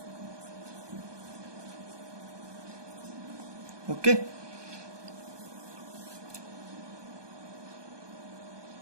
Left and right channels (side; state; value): left; late; 1.2 ms